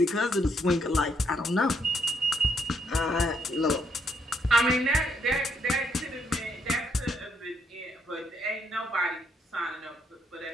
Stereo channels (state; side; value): normal; both; correlation 0.73